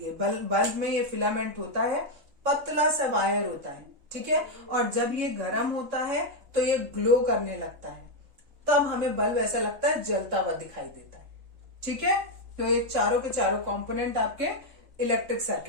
बल्ब में ये फिलामेंट होता है, पतला सा वायर होता है। ठीक है, और जब ये गर्म होता है तो ये ग्लो करने लगता है, तब हमें बल्ब ऐसा लगता है जलता हुआ दिखाई देता है। ठीक है, तो ये चारों के चारों कंपोनेंट आपके इलेक्ट्रिक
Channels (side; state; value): left; late; 3.4 ms